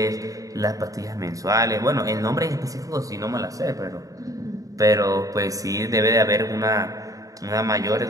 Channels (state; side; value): late; left; 0.17 ms